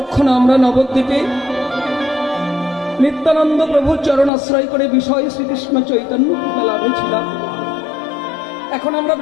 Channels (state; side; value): drops out; right; at 4.3 s